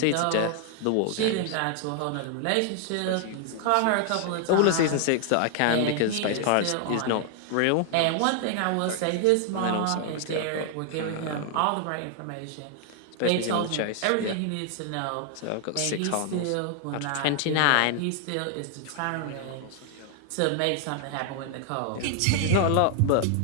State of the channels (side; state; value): both; different; correlation 0.00